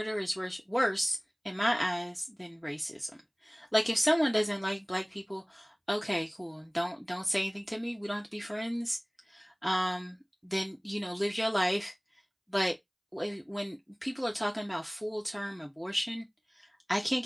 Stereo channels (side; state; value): both; identical; correlation 1.00